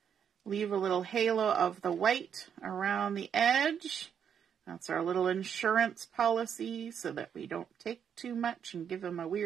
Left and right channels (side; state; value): left; quieter; 8.0 dB